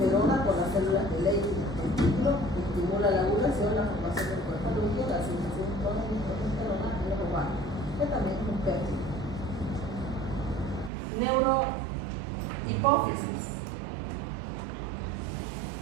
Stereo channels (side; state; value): left; drops out; at 10.9 s